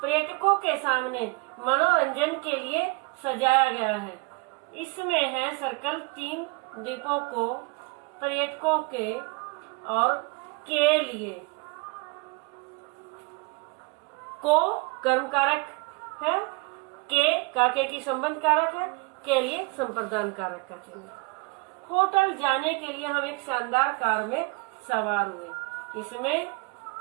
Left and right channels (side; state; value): left; quieter; 27.8 dB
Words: पर्यटकों के सामने मनोरंजन के लिए सजाया गया है, इसमें है सर्कल। 3 द्वीपों को पर्यटकों के और के लिए। को कर्म कारक है, के की संबंध कारक है, के लिए संप्रदान कारक का चिन्ह। होटल जाने के लिए हम एक शानदार कार में सवार हुए, इसमें